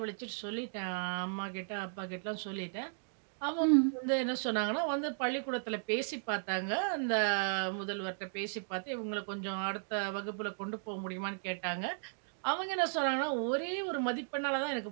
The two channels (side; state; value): left; silent; digital silence